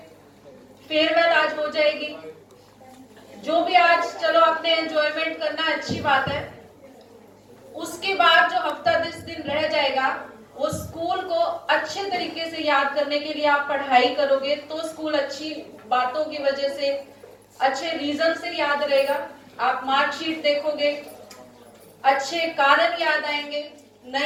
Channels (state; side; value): identical; both; correlation 1.00